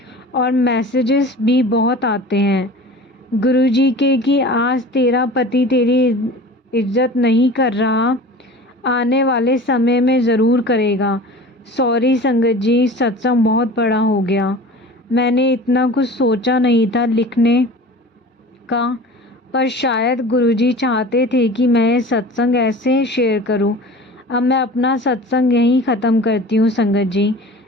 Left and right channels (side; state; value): both; normal; correlation 0.39